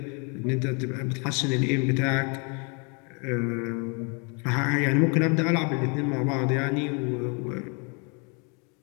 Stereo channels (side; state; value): right; quieter; 34.8 dB